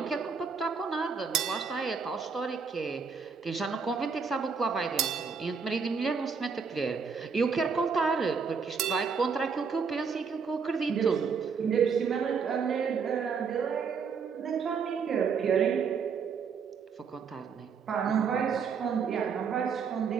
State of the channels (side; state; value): left; quieter; 5.8 dB